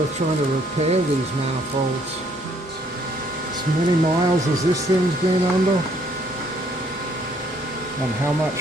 trying to repair these manifolds. As many miles as this thing's been under, and how much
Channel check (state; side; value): normal; both; correlation 0.66